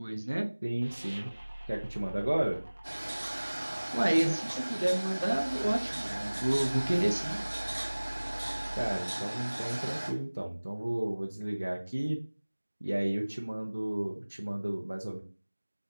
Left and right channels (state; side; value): inverted; both; correlation -1.00